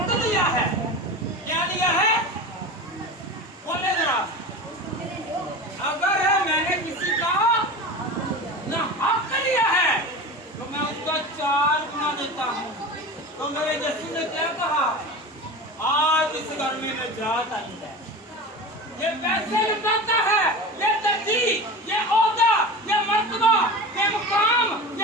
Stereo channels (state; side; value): normal; both; correlation 0.30